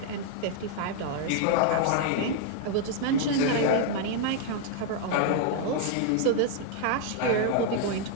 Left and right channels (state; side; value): different; both; correlation 0.00